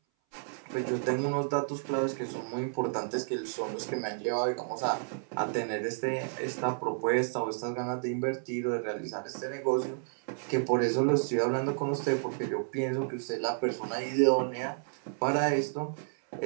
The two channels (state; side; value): silent; left; 57 dB below the other